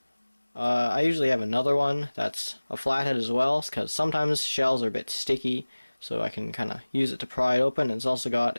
I usually have another one that's a flathead as well, because sometimes shells are a bit sticky, so I can kind of use it to pry it open. And it's also got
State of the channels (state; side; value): inverted; both; correlation -1.00